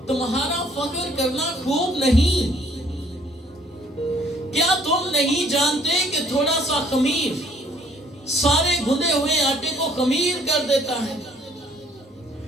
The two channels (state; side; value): normal; both; correlation 0.61